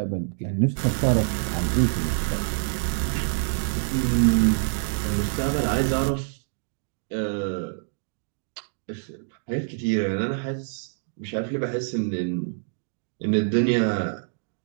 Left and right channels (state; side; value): silent; left; digital silence